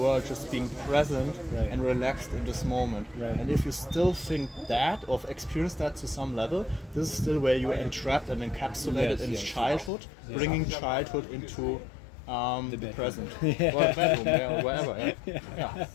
just being present and relaxed in this moment. And if you still think that, or experience that to some level, this is still where you are entrapped and encapsulated in childhood, bringing childhood into the present, or the bedroom, or wherever.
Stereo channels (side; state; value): right; drops out; at 9.9 s